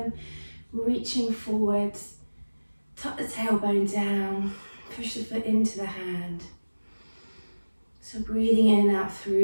reaching forwards, tuck the tailbone down, push the foot into the hand. So breathing in and out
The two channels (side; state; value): both; inverted; correlation -1.00